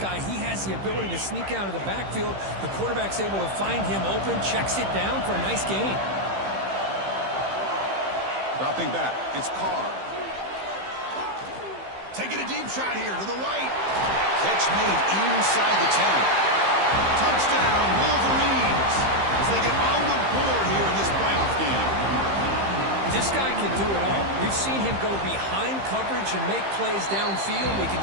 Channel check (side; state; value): left; late; 15 ms